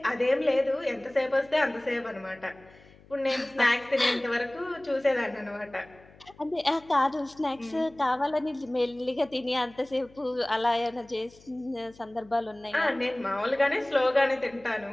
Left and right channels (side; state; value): left; noise; hum, 25 dB below the sound